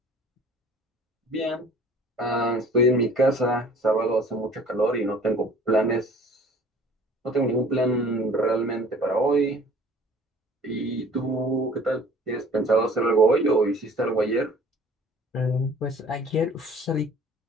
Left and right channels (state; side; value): normal; both; correlation 0.50